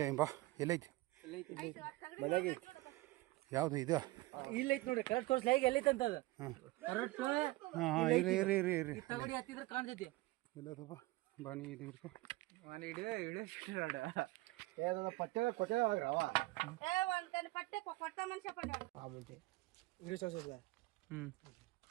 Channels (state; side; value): quieter; left; 20.4 dB